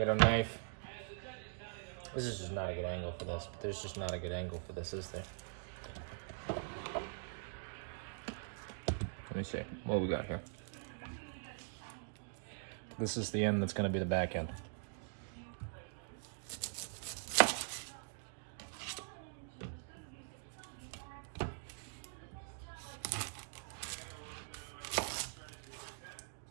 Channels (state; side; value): silent; left; digital silence